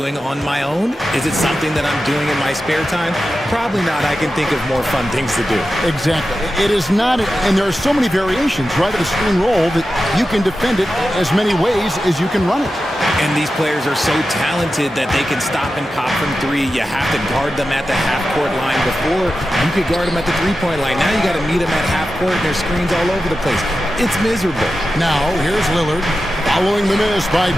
on my own? Is it something that I'm doing in my spare time? Probably not. I can think of more fun things to do. Exactly. It is not, and there are so many variations, right, of the screen roll that you can defend it as many ways as you can run it. And these players are so talented that they can stop and pop from 3. You have to guard them at the half-court line. Before, you could guard them at the 3-point line. Now you got to meet them at half-court, and there's screens all over the place. It's miserable. Now, here's Lillard, following the miss by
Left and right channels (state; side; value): normal; both; correlation 0.92